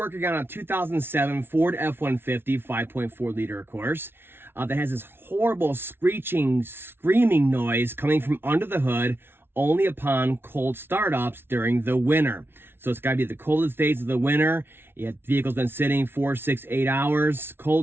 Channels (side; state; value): left; late; 0.11 ms